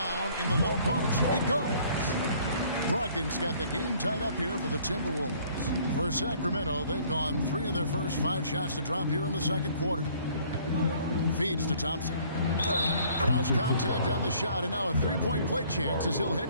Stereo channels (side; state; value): both; inverted; correlation -0.57